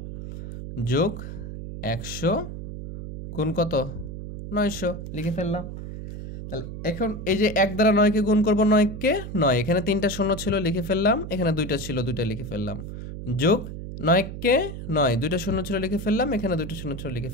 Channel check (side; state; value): right; noise; hum, 9 dB below the sound